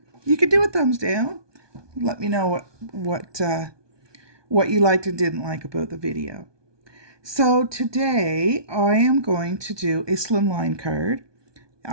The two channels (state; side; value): late; left; 1.2 ms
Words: you could do a thumbs down. Let me know what you liked and didn't like about the video. So today I am going to do a slimline card.